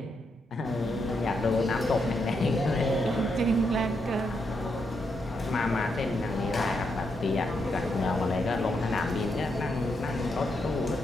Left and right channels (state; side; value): normal; both; correlation 0.81